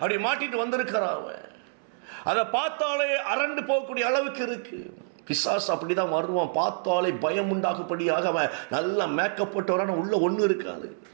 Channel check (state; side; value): silent; left; 60 dB below the other